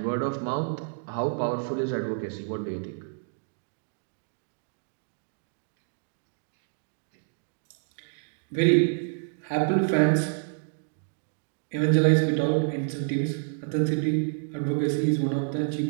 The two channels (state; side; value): silent; left; digital silence